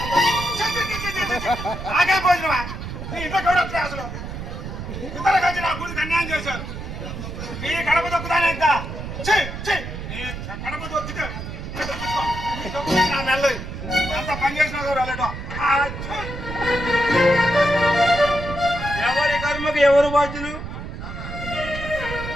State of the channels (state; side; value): noise; right; rumble, 8 dB below the sound